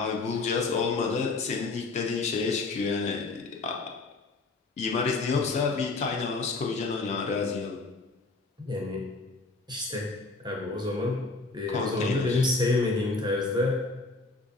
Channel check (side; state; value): right; quieter; 3.6 dB